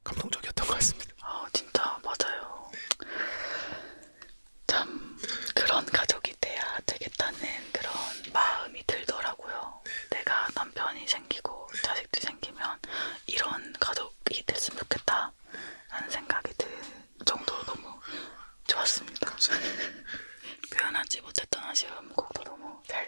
감동적이었던 것 같습니다. 진짜 맞아요. 참 그런 가족이 돼야 되겠다는 그런 마음이 들더라고요. 내가 남편이 생기고 자식들이 생기면 이런 가족이 됐으면 좋겠다 라는 생각이 들 정도로 너무 좋았습니다. 표현하지 못했던 아쉬움 곡도 너무 잘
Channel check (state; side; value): inverted; both; correlation -1.00